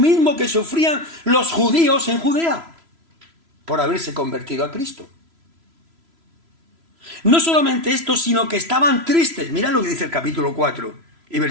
que sufrían los judíos en Judea por haberse convertido a Cristo. No solamente esto, sino que estaban tristes. Mirad lo que dice el capítulo 4 y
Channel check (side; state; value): left; late; 3.0 ms